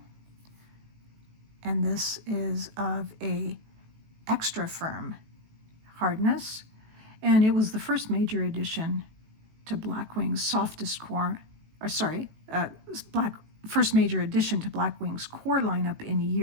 And this is of a extra firm hardness. And it was the first major addition to Blackwing's softest core, or sorry, first major addition to Blackwing's core lineup in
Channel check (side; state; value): left; late; 18 ms